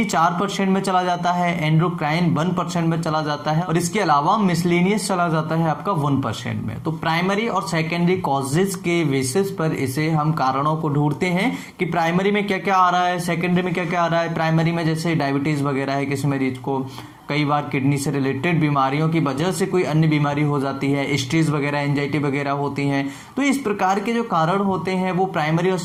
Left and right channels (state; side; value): identical; both; correlation 1.00